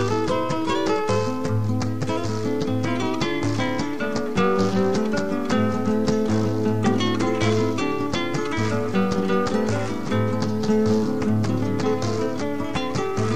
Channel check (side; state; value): both; identical; correlation 1.00